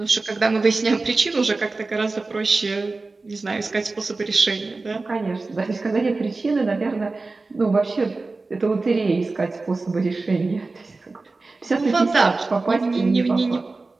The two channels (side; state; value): left; quieter; 3.6 dB